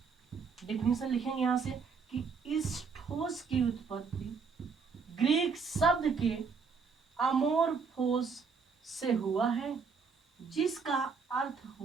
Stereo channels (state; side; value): quieter; left; 5.4 dB